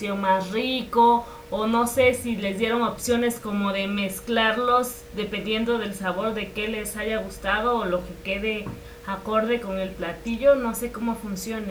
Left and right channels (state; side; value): identical; both; correlation 1.00